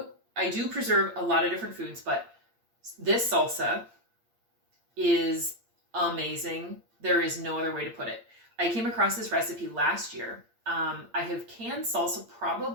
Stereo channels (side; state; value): left; late; 8.7 ms